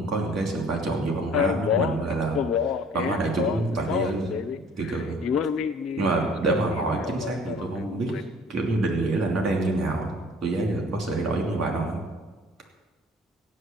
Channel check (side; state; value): both; normal; correlation 0.52